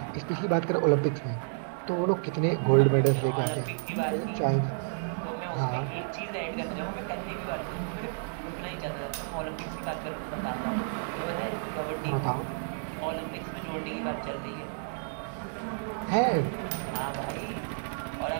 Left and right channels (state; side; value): silent; left; digital silence